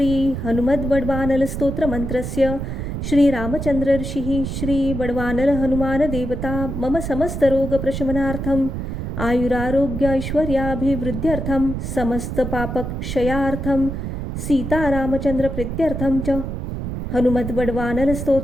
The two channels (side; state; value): right; noise; rumble, 5 dB below the sound